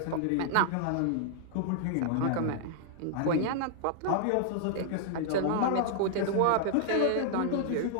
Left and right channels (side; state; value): both; different; correlation -0.01